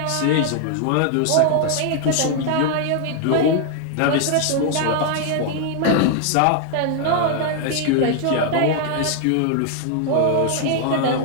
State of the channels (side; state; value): both; different; correlation 0.00